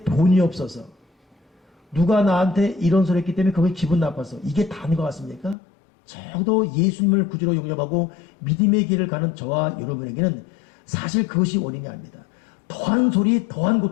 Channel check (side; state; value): right; drops out; at 5.6 s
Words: 돈이 없어서, 누가 나한테 이런 소리 했기 때문에 그게 기분 나빠서, 이게 다인 것 같습니까? 적어도 예수님을 구주로 영접하고 믿음의 길을 가는 저와 여러분에게는 사실 그것이 원인이 아닙니다. 더한 소리, 더한